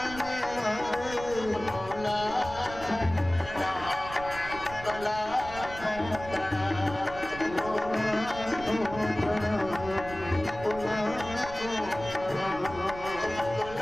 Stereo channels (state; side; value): noise; right; rumble, 13 dB below the sound